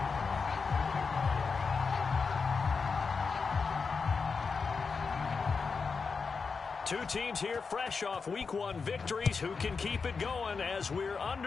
Two teams here fresh off Week 1 victories. Who can keep it going as we're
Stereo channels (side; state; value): right; quieter; 5.0 dB